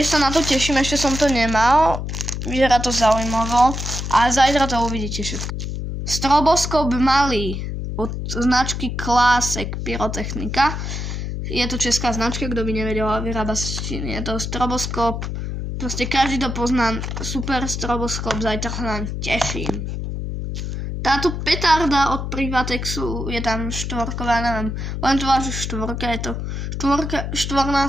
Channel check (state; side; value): noise; left; hum, 4 dB below the sound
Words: sa na to teším, ešte som to nemal. Vyzerá to zaujímavo. A zajtra to uvidíte všetko. Stroboskop malý od značky Classic pyrotechnika. Je to česká značka, kto by nevedel, vyrába sa z Číny. Je to stroboskop. Proste každý to pozná. Super stroboskop, zajtra sa nám teším. Táto petarda od Privatexu je tam štvorková, neviem, len to vážu štvorka, je to